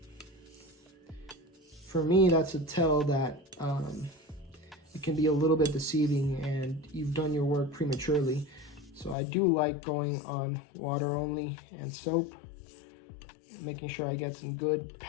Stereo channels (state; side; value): drops out; right; at 9.2 s